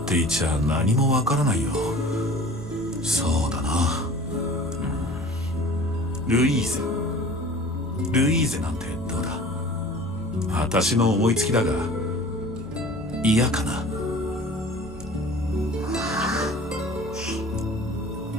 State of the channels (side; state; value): both; normal; correlation 0.43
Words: ていちゃ何もわからないよ。そうだな、ルイーゼ。ルイーゼなんてどうだ？私の思いつきだが嫌かな。